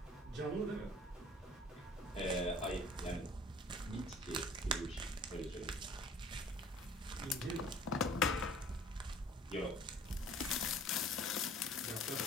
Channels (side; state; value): both; normal; correlation 0.49